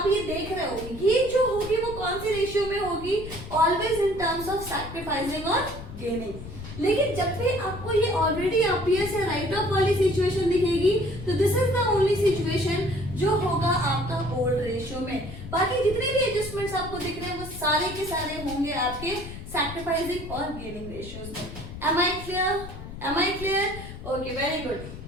ये देख रहे हो, ये जो होगी वो कौन सी रेशियो में होगी, always in terms of sacrificing और गेनिंग। लेकिन जब भी आपको ये ऑलरेडी अपीयर्स या राइट ऑफ वाली सिचुएशन दिखेगी तो this is the only situation जो होगा आपका ओल्ड रेशियो में। बाकी जितने भी एडजस्टमेंट्स आपको दिख रहे हैं वो सारे के सारे होंगे आपके सैक्रिफाइसिंग और गेनिंग रेशियोज में। Am I clear, am I clear, okay, very good.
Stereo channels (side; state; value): left; noise; rumble, 11 dB below the sound